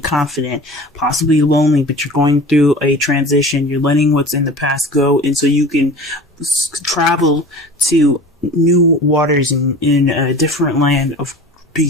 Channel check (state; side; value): normal; both; correlation 0.39